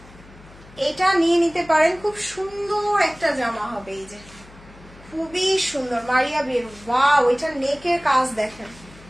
এটা নিয়ে নিতে পারেন, খুব সুন্দর একটা জামা হবে। এই যে খুবই সুন্দর মারিয়াবির, ওয়াও এটা নেকের কাজ দেখেন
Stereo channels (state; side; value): noise; left; hum, 22 dB below the sound